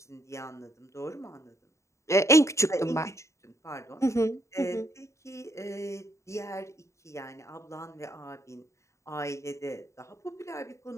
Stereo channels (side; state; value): right; late; 0.14 ms